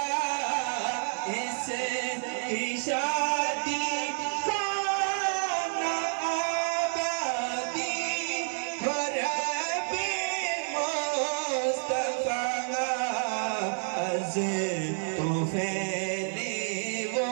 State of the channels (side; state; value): left; silent; 58 dB below the other